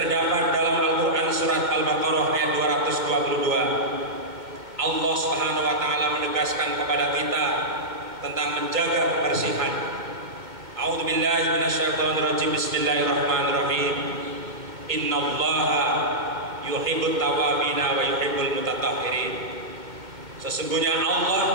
dalam Al-Quran surat Al-Baqarah ayat 222. Allah Subhanahu wa Ta'ala menegaskan kepada kita tentang menjaga kebersihan. A'udzu billahi minasyaitonir rajim, bismillahirrahmanirrahim, innallaha yuhibbut tawwabina wa yuhibbul mutatahhirin. Sesungguhnya Allah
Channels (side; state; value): left; late; 2.1 ms